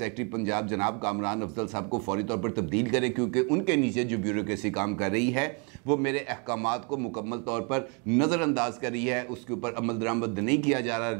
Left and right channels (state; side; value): quieter; left; 34.6 dB